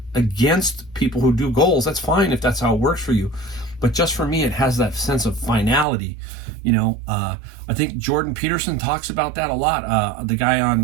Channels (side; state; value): left; drops out; at 5.9 s